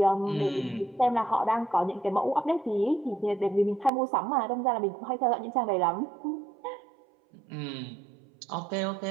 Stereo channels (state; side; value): drops out; left; at 3.9 s